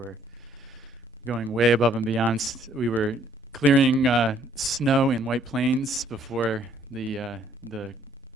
going way above and beyond. We were clearing snow in White Plains before the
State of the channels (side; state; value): both; normal; correlation 0.63